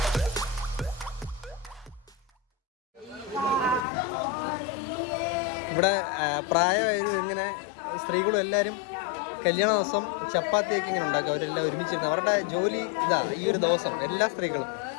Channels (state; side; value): drops out; right; at 3.9 s